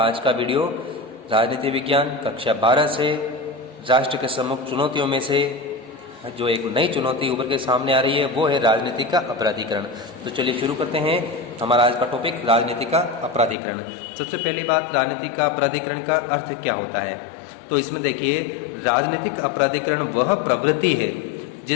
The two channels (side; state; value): right; drops out; at 13.6 s